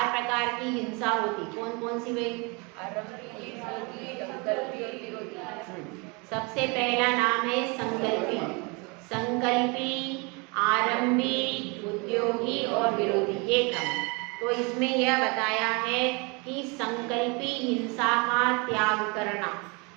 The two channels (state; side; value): quieter; left; 29.9 dB